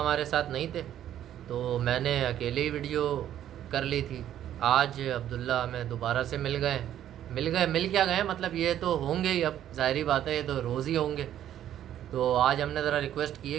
साथ नहीं थे तो मैंने अकेले ही वीडियो कर ली थी। आज अब्दुल्ला हमें दोबारा से मिल क्या गए, मतलब ये तो होंगे ही, अब ज़ाहिरी बात है, ये तो रोज़ ही होंगे। तो आज हमने ज़रा रिक्वेस्ट की है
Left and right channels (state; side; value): quieter; left; 11.2 dB